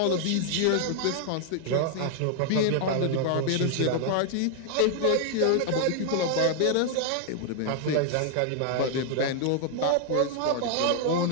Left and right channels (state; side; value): different; both; correlation 0.00